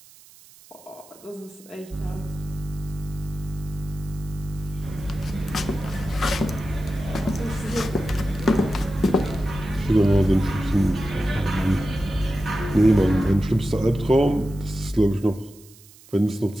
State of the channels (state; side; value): noise; right; hiss, 24 dB below the sound